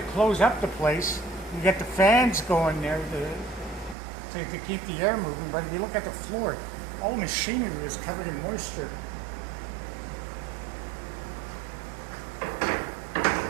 up the place. We got the fans going there to keep the air moving. But if you look at the floor, all the machinery is covered in moisture.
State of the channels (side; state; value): left; drops out; at 4.0 s